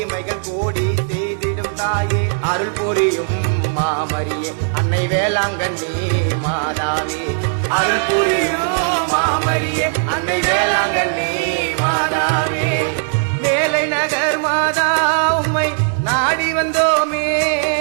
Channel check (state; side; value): silent; left; digital silence